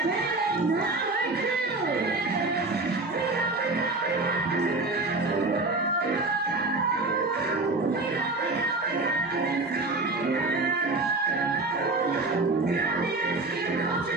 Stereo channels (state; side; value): quieter; left; 3.2 dB